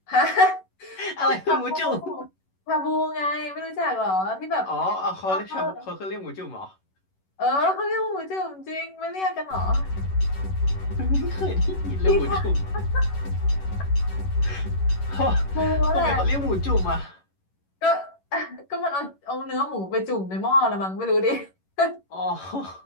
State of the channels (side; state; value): right; late; 11 ms